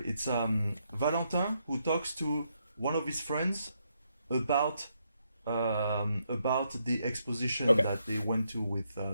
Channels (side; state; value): both; inverted; correlation -0.78